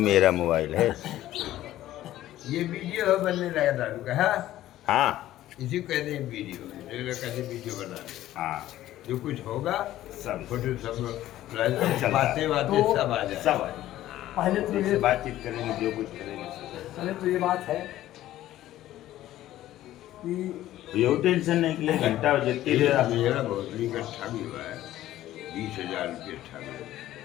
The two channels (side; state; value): right; quieter; 14.0 dB